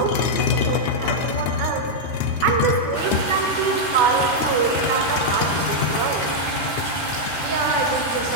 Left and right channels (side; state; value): right; late; 13 ms